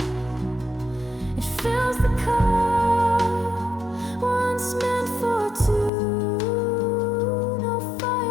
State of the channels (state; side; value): drops out; right; at 5.9 s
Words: It fills the cup once meant for two. No